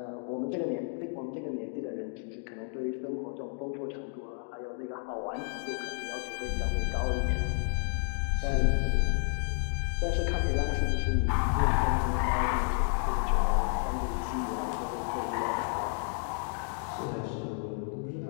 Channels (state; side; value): silent; right; 57 dB below the other